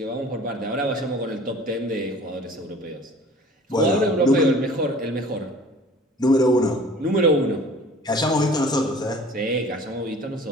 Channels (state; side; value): normal; both; correlation 0.47